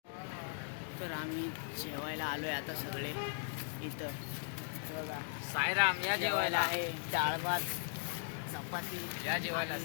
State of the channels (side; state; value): right; silent; digital silence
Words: तर आम्ही जेवायला आलोय आता सगळे इथं. बघा साईराम या जेवायला आहे डाळ भात चपाती या जेवायला